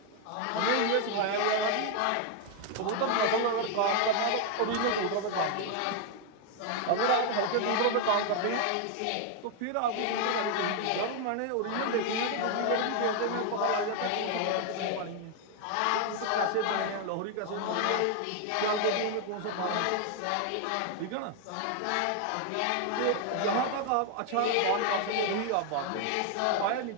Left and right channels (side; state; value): both; different; correlation 0.01